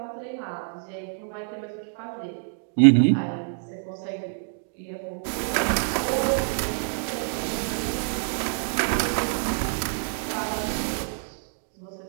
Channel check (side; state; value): left; silent; digital silence